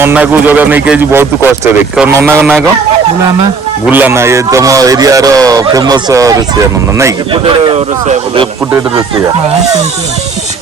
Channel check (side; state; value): left; quieter; 4.6 dB